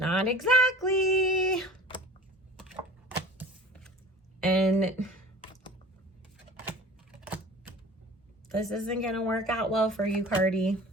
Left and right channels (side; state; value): both; normal; correlation 0.42